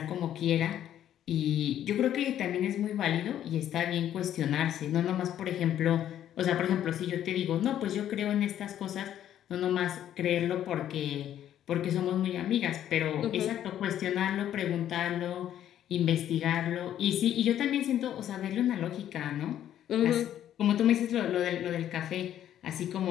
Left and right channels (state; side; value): quieter; right; 11.1 dB